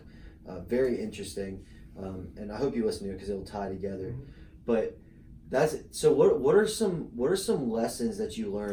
Very interesting. And I hope you listen to it because it'll tie together. But that's it. So what are some lessons that you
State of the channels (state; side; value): identical; both; correlation 1.00